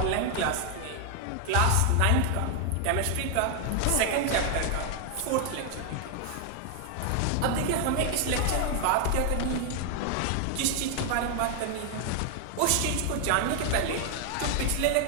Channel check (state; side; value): different; both; correlation 0.00